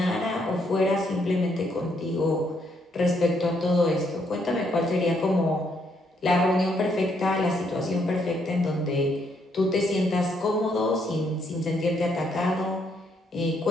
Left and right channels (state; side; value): normal; both; correlation 0.73